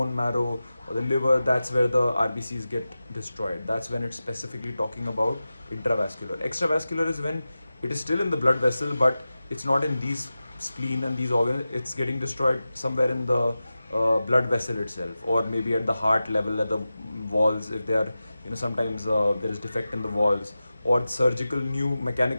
marrow or the liver, that's where the RBCs get destroyed. That's when it's specifically talking about intravascular. Extravascular is when it is still in the blood vessel, but it's not in these spleen and these organs. It's getting destroyed somewhere in the blood vessel itself, or maybe at the heart level, at the walls, if they are, sometimes there is defect in the walls, or surgical new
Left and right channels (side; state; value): both; inverted; correlation -0.94